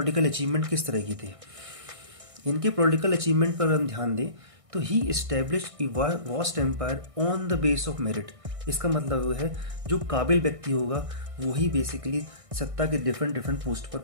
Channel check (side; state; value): left; late; 1.6 ms